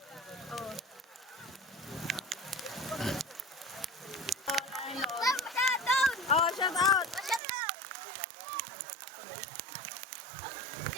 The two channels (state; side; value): drops out; left; at 7.4 s